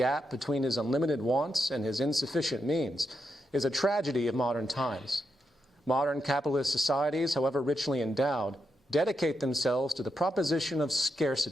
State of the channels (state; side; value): normal; both; correlation 0.84